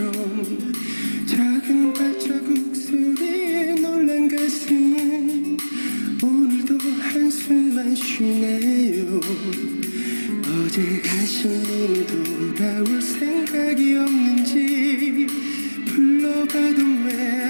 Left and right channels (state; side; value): inverted; both; correlation -1.00